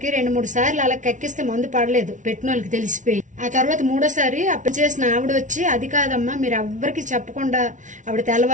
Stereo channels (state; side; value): late; left; 0.37 ms